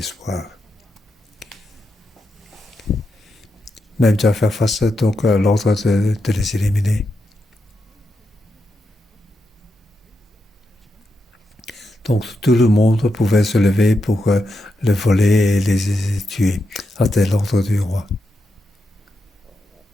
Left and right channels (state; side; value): normal; both; correlation 0.85